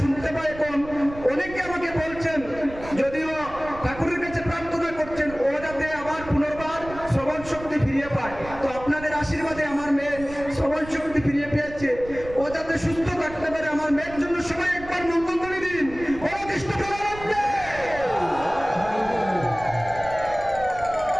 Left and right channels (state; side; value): noise; right; rumble, 15 dB below the sound